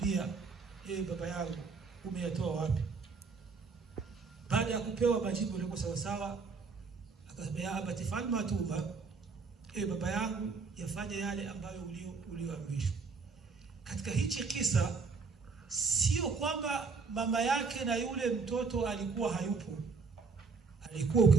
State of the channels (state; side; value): quieter; left; 4.7 dB